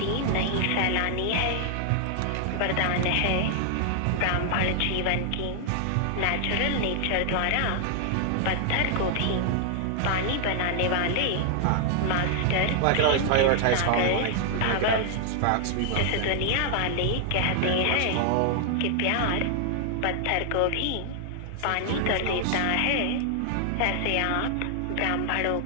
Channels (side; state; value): both; different; correlation 0.00